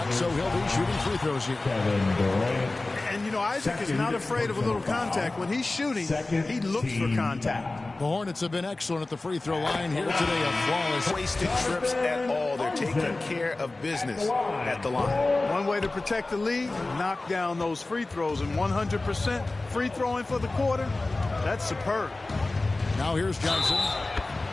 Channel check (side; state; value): right; quieter; 3.1 dB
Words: so he'll be shooting free throws here. Kevin Durant. And you know, Isaac is not afraid of a little contact. When he's shooting, he looks for contact. The Hornets have been excellent at the free throw line here today. A flawless. Wasted trips at all. They're taking care of business at the line. One way to protect the lead, knock down those free throws, and 100% free throwing for the quarter, that's superb. Now here's Johnson.